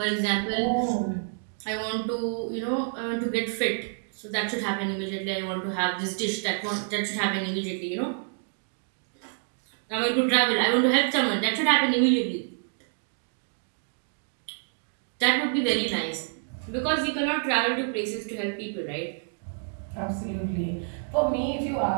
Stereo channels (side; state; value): left; silent; digital silence